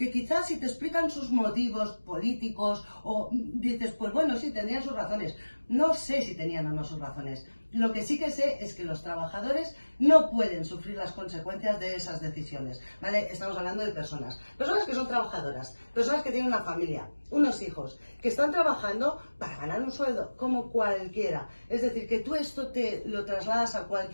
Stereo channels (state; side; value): inverted; both; correlation -1.00